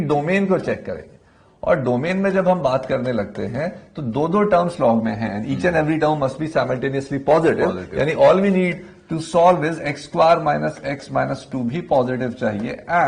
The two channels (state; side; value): identical; both; correlation 1.00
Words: डोमेन को चेक करेंगे। और डोमेन में जब हम बात करने लगते हैं तो दो टर्म्स लॉग में हैं, each and every term must be simultaneously positive, यानी all we need to solve is X square minus x minus 2 भी पॉजिटिव चाहिए